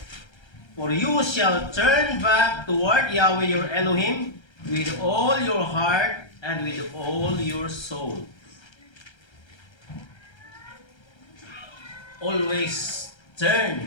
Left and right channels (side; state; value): right; late; 1.3 ms